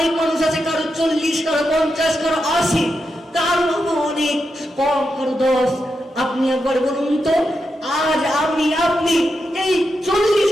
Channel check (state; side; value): normal; both; correlation 0.86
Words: মানুষ আছে, কারো 40, কারো 50, কারো 80, কারো অনেক কম, কারো 10। আপনি একবার বলুন তো, আজ আপনি এই